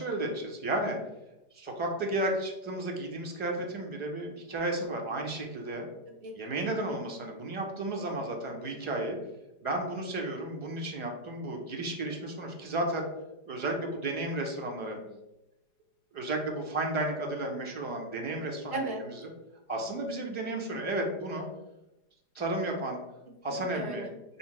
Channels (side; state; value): right; late; 4.9 ms